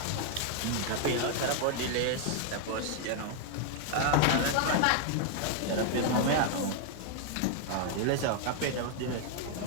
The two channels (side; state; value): both; different; correlation 0.00